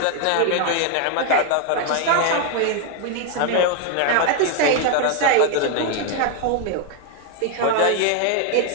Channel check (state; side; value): different; both; correlation 0.01